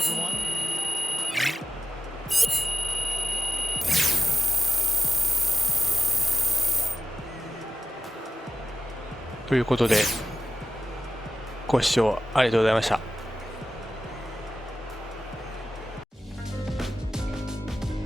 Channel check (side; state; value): both; normal; correlation 0.95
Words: ということで、ご視聴ありがとうございました。